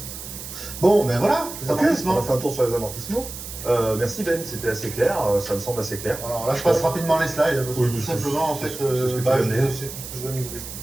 Bon, ben voilà, les Ok, amortissements. on a fait un tour sur les amortissements. Merci Ben, c'était assez clair, ça me semble assez clair. Alors là, je passe rapidement les slides, parce que Oui, tout c'est- simplement, en c'est- fait, c'est ce que tu c'est viens de dire. tout ce que je viens de vous expliquer.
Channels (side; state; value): right; noise; hiss, 10 dB below the sound